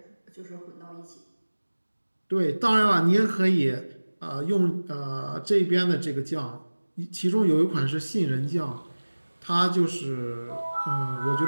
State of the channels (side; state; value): both; inverted; correlation -1.00